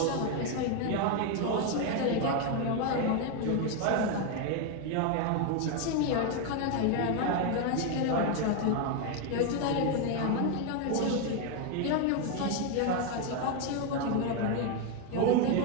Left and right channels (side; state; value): both; different; correlation 0.01